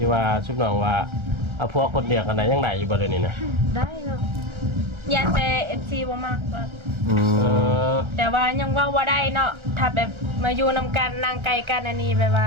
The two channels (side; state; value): left; late; 1.3 ms